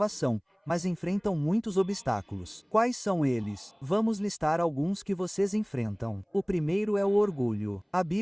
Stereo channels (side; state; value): both; identical; correlation 1.00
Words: mas enfrentam muitos obstáculos. Quais são eles? Vamos listar alguns que vocês enfrentam. O primeiro é o orgulho. A